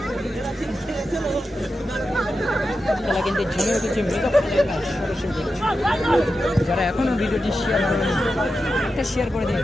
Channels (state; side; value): normal; both; correlation 0.90